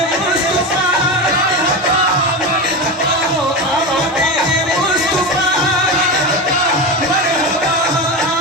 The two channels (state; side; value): normal; both; correlation 0.21